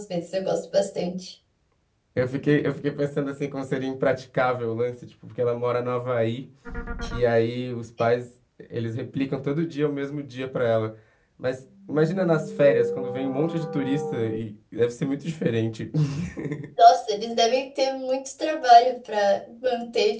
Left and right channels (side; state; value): both; identical; correlation 1.00